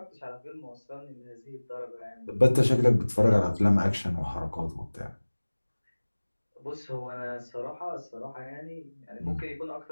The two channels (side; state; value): both; inverted; correlation -1.00